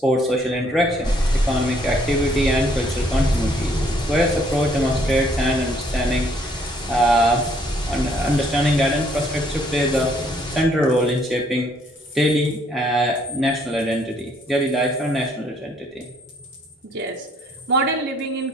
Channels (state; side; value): normal; both; correlation 0.65